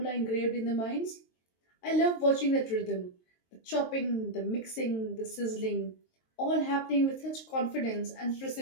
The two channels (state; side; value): late; right; 22 ms